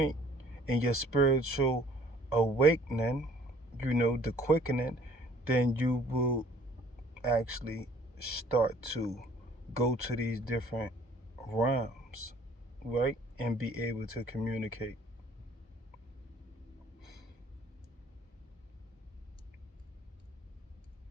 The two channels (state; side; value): normal; both; correlation 0.55